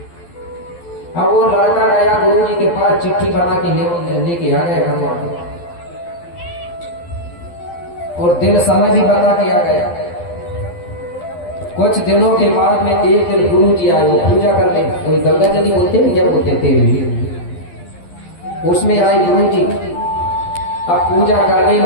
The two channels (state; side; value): late; right; 12 ms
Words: अब वो लड़का गया गुरु जी के पास, चिट्ठी बना के लेके आ गया बनवा के, और दिन समय भी बता के आ गया। कुछ दिनों के बाद में एक दिन गुरु जी आए, वो पूजा करने, कोई गंगा जली बोलते हैं क्या बोलते थे, उसमें आए गुरु जी। अब पूजा करने